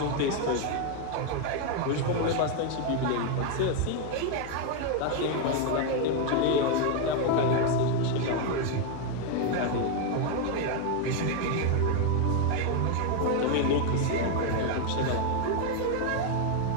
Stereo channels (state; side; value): different; both; correlation 0.01